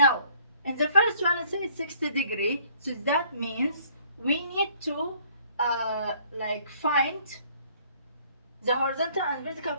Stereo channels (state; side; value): inverted; both; correlation -0.60